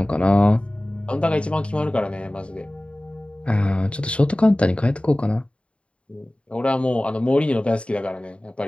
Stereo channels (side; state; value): right; late; 0.059 ms